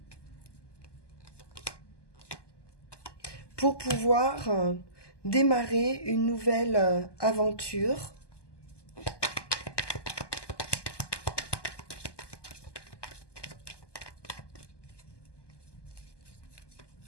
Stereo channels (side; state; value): right; late; 1.2 ms